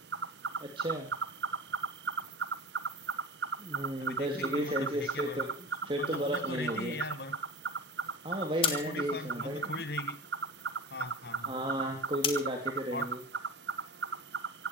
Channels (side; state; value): both; normal; correlation 0.31